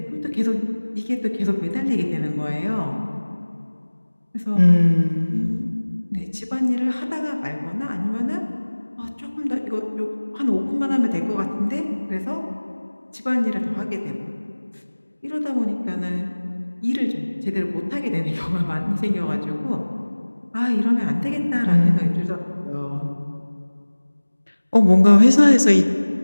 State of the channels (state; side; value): inverted; both; correlation -1.00